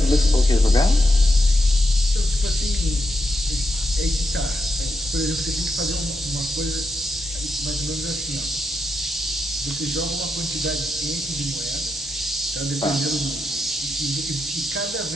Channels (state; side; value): normal; both; correlation 0.83